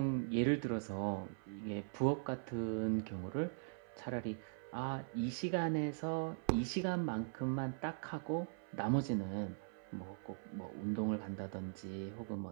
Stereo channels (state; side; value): silent; left; 50 dB below the other